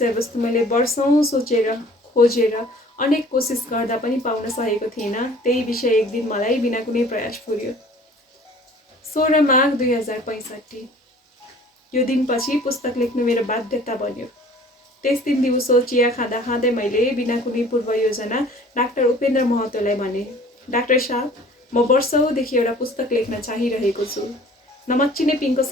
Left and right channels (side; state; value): both; normal; correlation 0.50